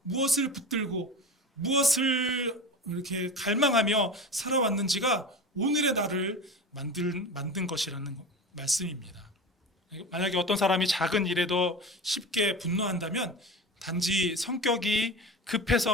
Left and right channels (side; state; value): both; normal; correlation 0.30